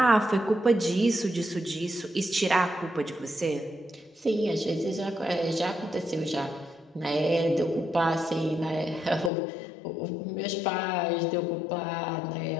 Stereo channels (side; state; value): right; drops out; at 9.3 s